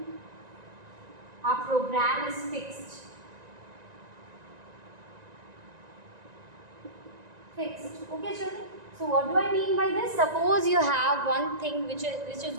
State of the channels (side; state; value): left; late; 1.9 ms